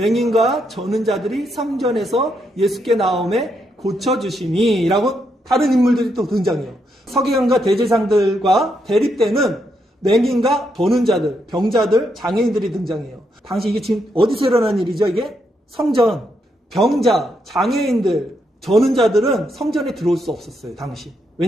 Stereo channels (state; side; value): normal; both; correlation 0.79